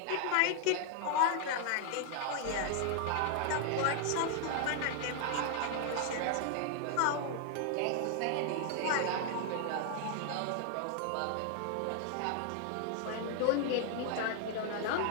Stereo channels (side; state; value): both; different; correlation 0.00